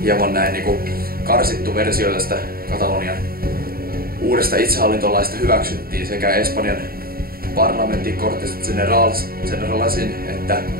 hieman näin niin kuin karsittu versio tästä Katalonian uudesta itsehallintolaista hyväksyttiin sekä Espanjan parlamentin Cortes Generalasin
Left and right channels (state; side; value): late; left; 0.43 ms